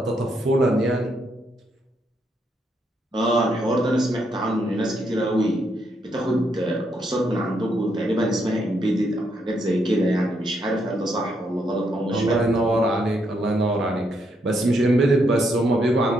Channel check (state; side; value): normal; both; correlation 0.77